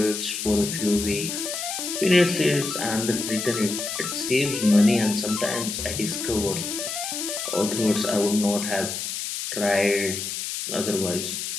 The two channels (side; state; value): left; noise; hiss, 4 dB below the sound